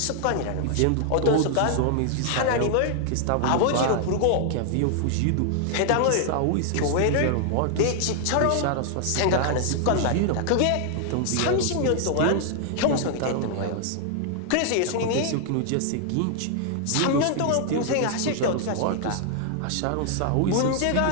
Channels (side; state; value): both; different; correlation 0.00